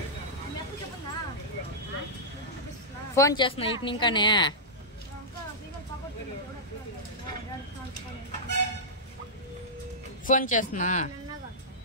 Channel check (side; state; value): both; normal; correlation -0.13